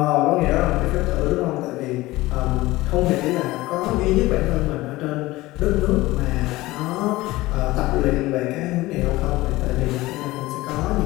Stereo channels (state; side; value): quieter; right; 18.9 dB